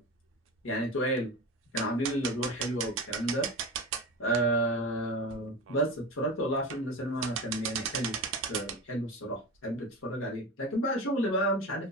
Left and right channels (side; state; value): both; normal; correlation 0.27